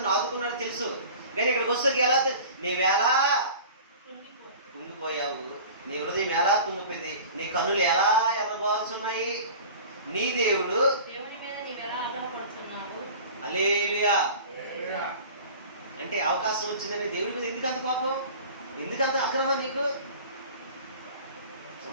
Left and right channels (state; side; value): inverted; both; correlation -0.40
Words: ఆదుకున్నారో తెలుసు. కానీ ఇక్కడికి వచ్చేసరికి ఎలా నీవెలా కుంగిపోయావు, నీ హృదయం ఎలా కుంగిపోయింది, నీ కన్నులు ఎలా ఎర్రబారుచున్నాయి, నీ దేవుడు దేవుని మీద నీవెలా ఆగ్రహపరుచున్నావు. హల్లెలూయా. అంటే అవకాశం వచ్చిందని దేవుడి మీద ఎందుకంత కోపం, ఎందుకంత ఆగ్రహం నీకు?